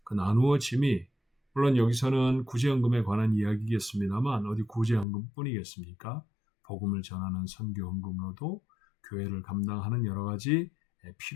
그 나누어짐이 물론 여기서는 구제헌금에 관한 이야기겠습니다만 어디 구제헌금뿐이겠습니까? 복음을 전하는 선교헌금으로도 교회를 감당하는 여러 가지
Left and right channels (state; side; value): drops out; right; at 5.1 s